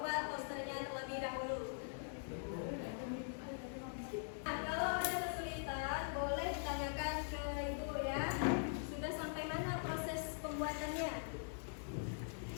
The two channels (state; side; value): silent; right; digital silence